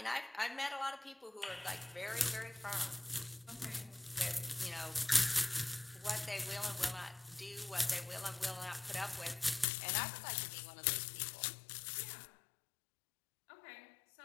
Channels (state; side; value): drops out; right; at 9.7 s